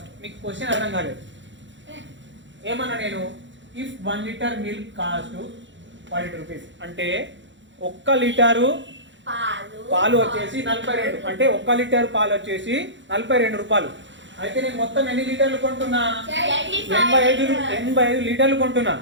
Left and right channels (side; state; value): left; late; 0.54 ms